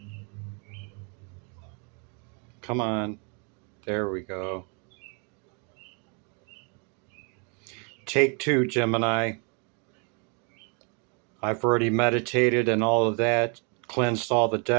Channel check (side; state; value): left; quieter; 36.7 dB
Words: Come on. There we go. Take two, Gemini. I've already meditated and all of that, cleansed all the